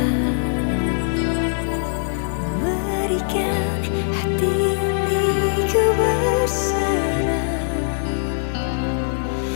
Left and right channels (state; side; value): silent; right; 57 dB below the other